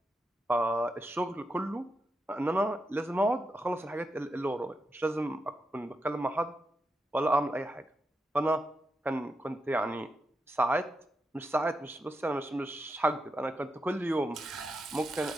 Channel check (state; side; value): normal; both; correlation 0.85